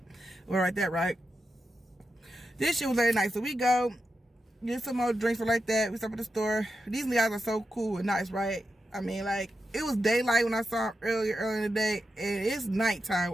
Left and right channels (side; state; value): both; normal; correlation 0.88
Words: or like that, right? This shit was very nice. So we go get some more drinks or like that. We stop at the store. These guys are so cool and nice, right? I mean, like, it was daylight when I saw them earlier in the day, and it's nighttime.